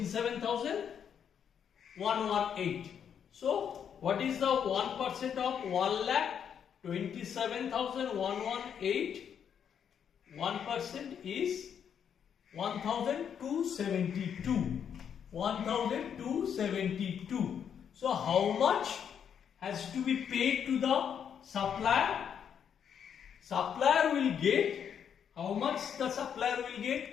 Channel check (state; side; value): quieter; right; 8.1 dB